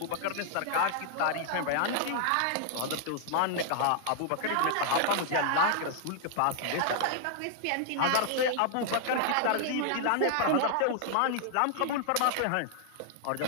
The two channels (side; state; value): both; different; correlation 0.00